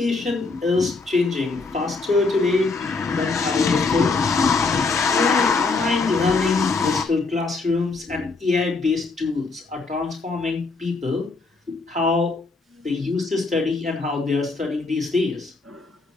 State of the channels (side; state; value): right; quieter; 3.9 dB